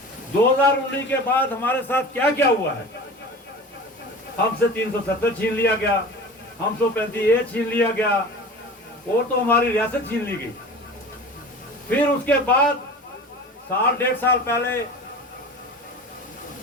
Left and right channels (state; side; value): normal; both; correlation 0.36